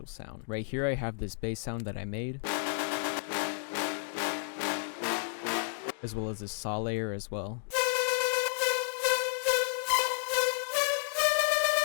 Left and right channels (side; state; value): right; silent; 57 dB below the other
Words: sound. Right here I have this bass sound that I made, as well as this saw layer as well.